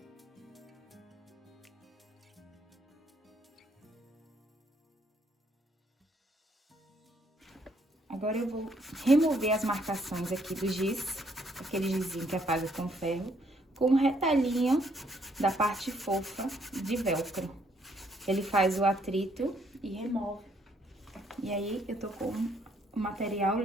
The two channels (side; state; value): both; normal; correlation 0.69